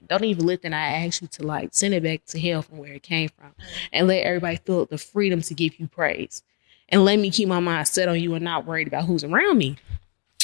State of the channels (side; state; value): right; quieter; 37.2 dB